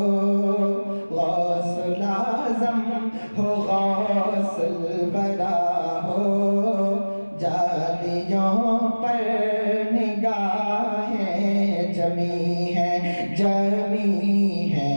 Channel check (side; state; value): both; inverted; correlation -1.00